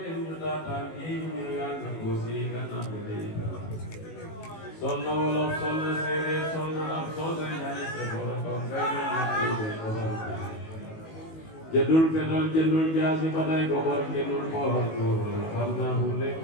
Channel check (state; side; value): late; right; 19 ms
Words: ñu daataan kii ñu yàgg ko si gannaaw bi day sol na wolof sol na séeréer sol na am sol na ñaari sa borom ko fay na koy de borom jëndul fetal jëndul jaasi ba day ko bor jëndul boor xam naa fu nekk